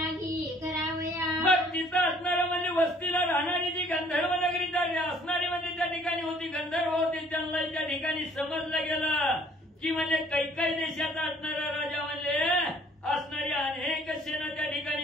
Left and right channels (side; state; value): both; normal; correlation 0.58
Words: करावया. मग तिथं असणारं म्हणजे वस्तीला राहणारी जी गंधर्व नगरी असणारी म्हणजे त्या ठिकाणी होती गंधर्व होती. त्यांना त्या ठिकाणी समजलं गेलं की म्हणजे कैकेयी देशाचा असणारा राजा म्हणजे असणारी अनेक सेना त्या